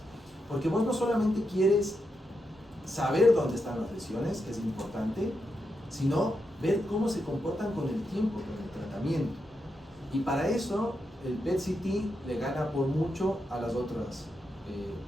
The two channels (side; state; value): both; normal; correlation 0.85